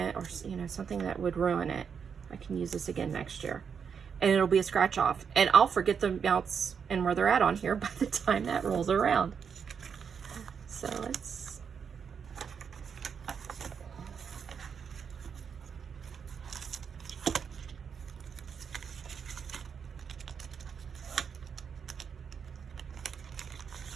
or, you know, something that would ruin it, I can use this again next year. And it'll be a scratch off. And I'll forget the amounts and where they're at on here by the time that rolls around. So let's...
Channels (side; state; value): left; quieter; 6.7 dB